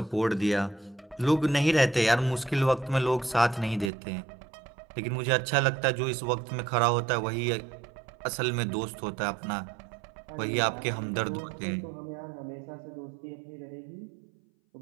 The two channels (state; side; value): drops out; left; at 3.9 s